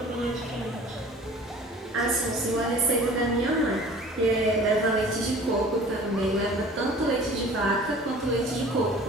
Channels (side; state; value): both; normal; correlation 0.46